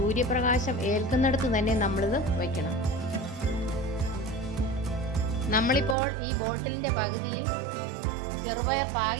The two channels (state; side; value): drops out; left; at 6.0 s